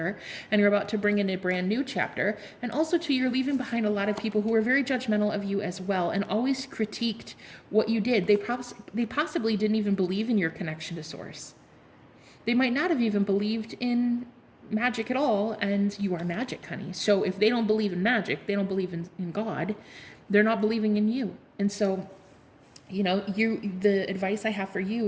And you're about to bring in a brand new chapter. And also, too, you're leaving behind a lot of people who were very judgmental of you as well and always critiqued what you did. They possibly didn't even believe in your connection to Source. They might not have even believed in magic at all, and you are magic, honey. So if they don't believe in magic, they don't believe in God, they're not believing in you. And so, the advice I have for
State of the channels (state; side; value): identical; both; correlation 1.00